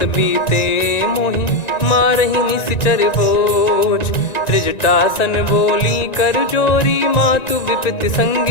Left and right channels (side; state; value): right; late; 1.9 ms